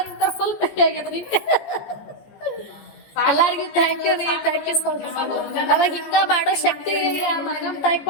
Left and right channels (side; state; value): right; late; 14 ms